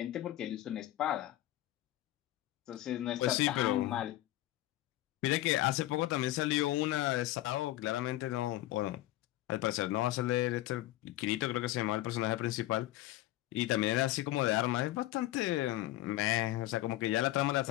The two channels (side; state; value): right; quieter; 15.3 dB